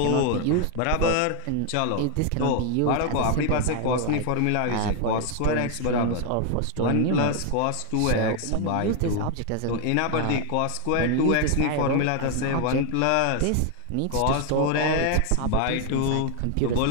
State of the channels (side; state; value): both; different; correlation 0.00